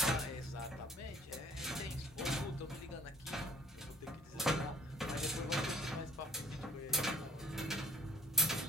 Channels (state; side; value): normal; both; correlation 0.53